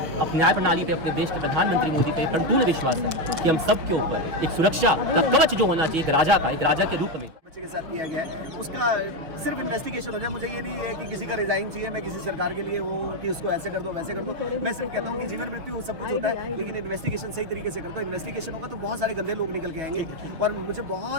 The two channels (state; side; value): late; left; 6.2 ms